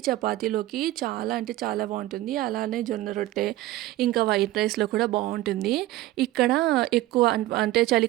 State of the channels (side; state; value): left; quieter; 16.0 dB